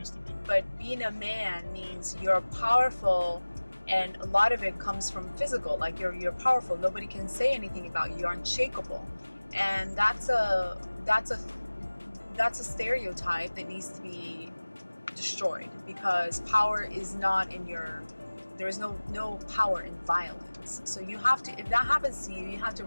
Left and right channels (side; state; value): both; inverted; correlation -1.00